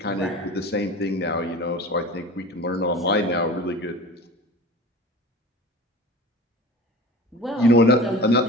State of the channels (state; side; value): normal; both; correlation 0.36